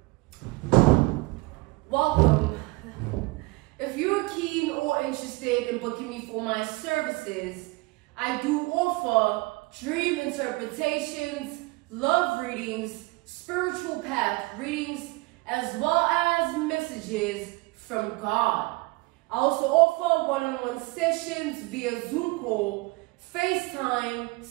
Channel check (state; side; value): quieter; left; 23.9 dB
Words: Welcome. If you're keen or interested in booking me for my services, I do offer dream interpretations, love readings, spiritual path readings, as well as messages from God. I also offer one-on-one sessions via Zoom call, FaceTime,